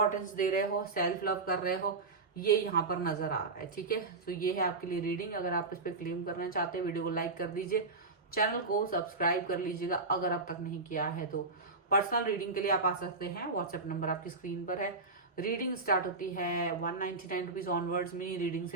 दे रहे हो, सेल्फ लव कर रहे हो, ये यहाँ पर नजर आ रहा है। ठीक है, तो ये है आपके लिए रीडिंग। अगर आप इस पर क्लेम करना चाहते हैं, वीडियो को लाइक कर दीजिए, चैनल को सब्सक्राइब कर लीजिएगा अगर अब तक नहीं किया है तो। पर्सनल रीडिंग के लिए आप आ सकते हैं, व्हाट्सएप नंबर आपकी स्क्रीन पर है। रीडिंग स्टार्ट होती है 199 रुपीज ऑनवर्ड्स। मिनी रीडिंग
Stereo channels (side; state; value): left; quieter; 3.7 dB